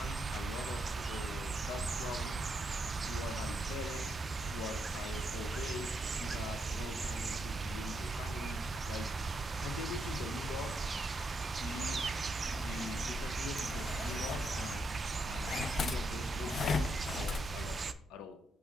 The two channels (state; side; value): normal; both; correlation 0.80